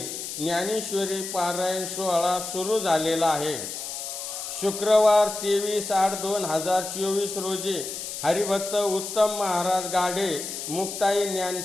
ज्ञानेश्वरी पारायण सोहळा सुरू झालेला आहे। शुक्रवार 23/8/2024 रोजी हरिभक्त उत्तम महाराज गाढे मुक्ताई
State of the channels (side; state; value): left; noise; hiss, 7 dB below the sound